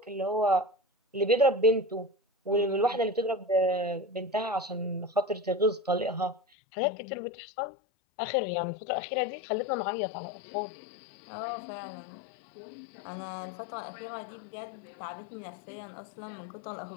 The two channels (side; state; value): right; drops out; at 6.4 s